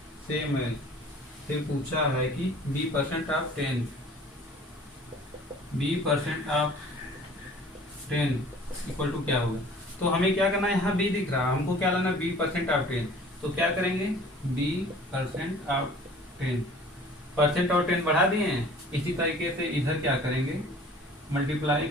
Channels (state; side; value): normal; both; correlation 0.49